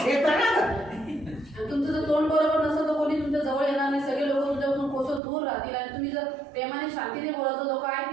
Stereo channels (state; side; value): drops out; left; at 5.2 s